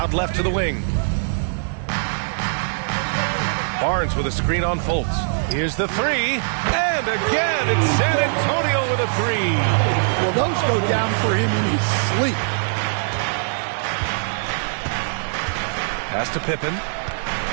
left to the wing. Barnes with a screen on Fultz. Here's the 3, and again it's San Antonio with a 3. Well, those go down for him in his sleep. Pass to Pippen.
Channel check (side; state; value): left; silent; digital silence